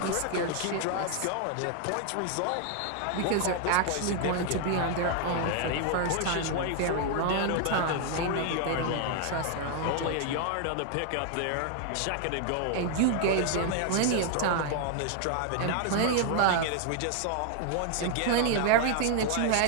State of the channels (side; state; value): both; different; correlation 0.00